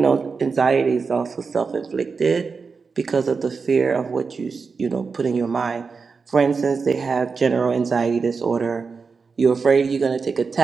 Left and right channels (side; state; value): left; quieter; 5.0 dB